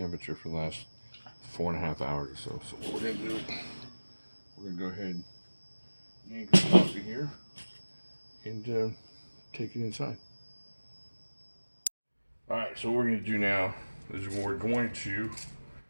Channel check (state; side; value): inverted; both; correlation -1.00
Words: for the last 4.5 hours or so. So what we're going to do, we're going to go ahead and yank it off of here and take it inside. Alright, so what we're going to do now is we're going to